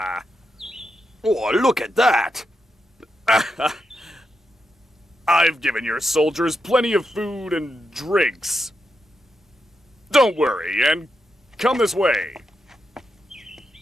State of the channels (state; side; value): normal; both; correlation 0.85